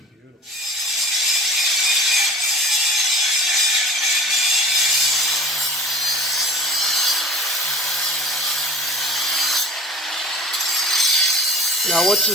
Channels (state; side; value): normal; both; correlation 0.42